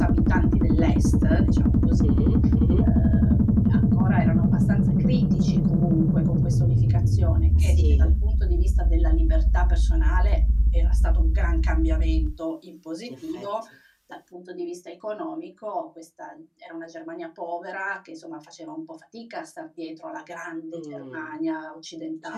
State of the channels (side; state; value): both; identical; correlation 1.00